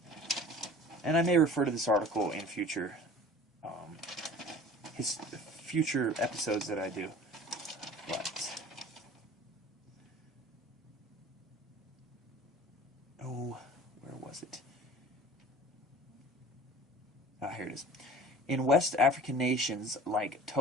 And I may refer to this article in future episodes that I do. But where was it? Here it is. In West African nations like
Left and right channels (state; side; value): normal; both; correlation 0.44